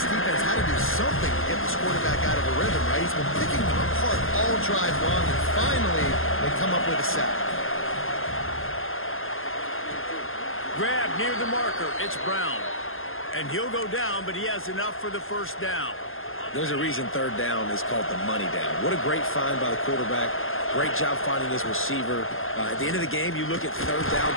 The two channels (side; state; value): right; late; 0.60 ms